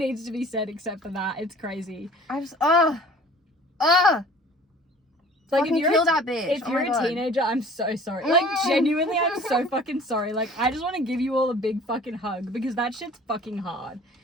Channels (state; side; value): normal; both; correlation 0.49